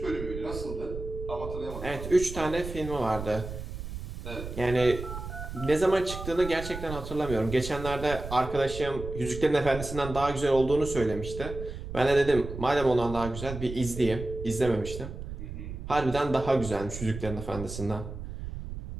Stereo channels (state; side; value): noise; right; rumble, 9 dB below the sound